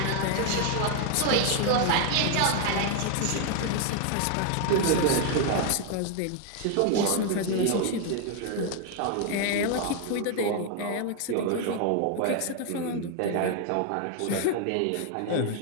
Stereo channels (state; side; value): different; both; correlation 0.00